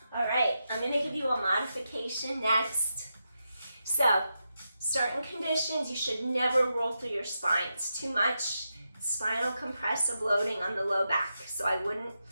All right, I'm going to give you a modification next. So, certain conditions, you should never roll through your spine. It's too much spinal compressive loading on the low back. So I wouldn't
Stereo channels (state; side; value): inverted; both; correlation -0.87